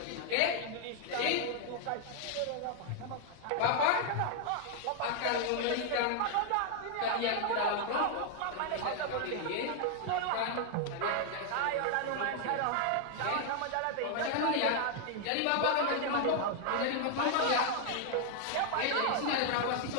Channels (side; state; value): both; different; correlation 0.00